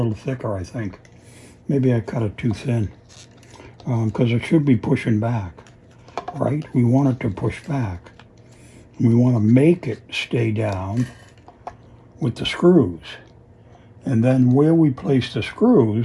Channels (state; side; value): identical; both; correlation 1.00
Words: thicker, I think. Maybe I cut it too thin because it should be pushing back, right? We want it to push back. We want to make it stay down with the screws. And then where we place the